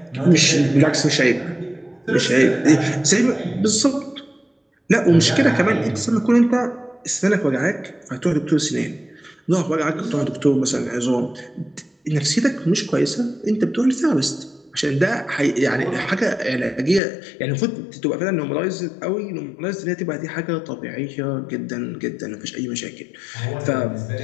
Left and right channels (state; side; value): drops out; right; at 17.0 s